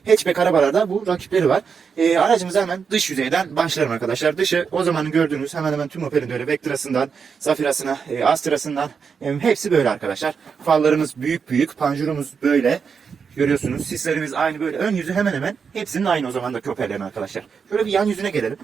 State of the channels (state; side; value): quieter; left; 6.1 dB